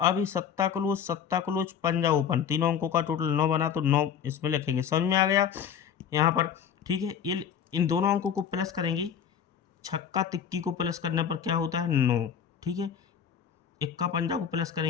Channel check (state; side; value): quieter; right; 8.2 dB